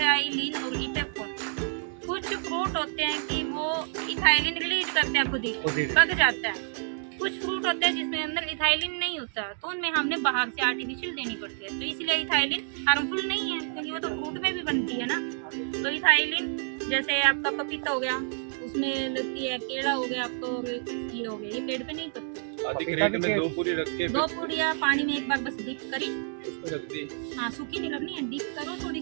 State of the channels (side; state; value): left; silent; 59 dB below the other